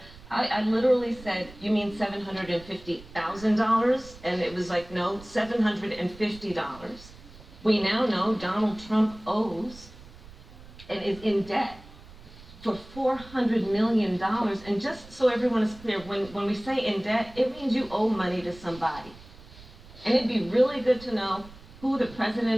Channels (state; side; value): noise; right; rumble, 20 dB below the sound